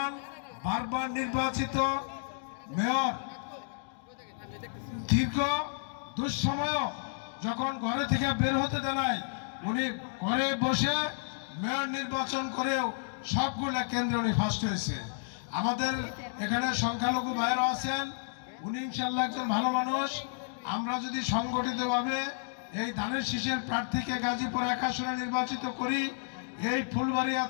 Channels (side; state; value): right; silent; digital silence